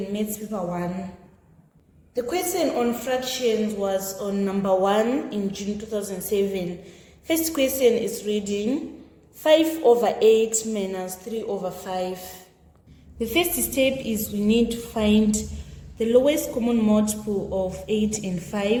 Maths Paper 1. The question on fractions was on number 1 in June 2007. First question is reading 5 over 8 minus 3 over 5. The first step is we need to find the lowest common multiple of 8 and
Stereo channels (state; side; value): identical; both; correlation 1.00